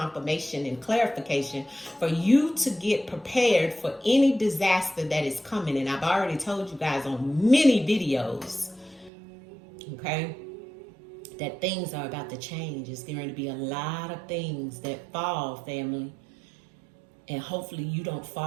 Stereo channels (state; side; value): drops out; left; at 9.1 s